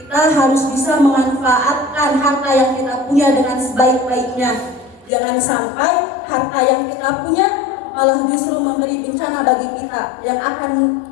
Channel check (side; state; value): right; drops out; at 5.1 s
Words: harus bisa memanfaatkan harta yang kita punya dengan sebaik-baiknya. Jangan sampai harta yang kita punya malah justru memberi bencana bagi kita yang akan